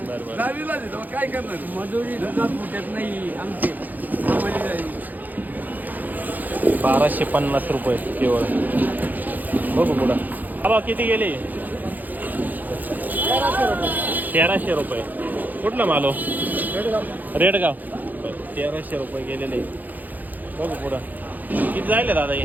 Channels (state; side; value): late; left; 0.083 ms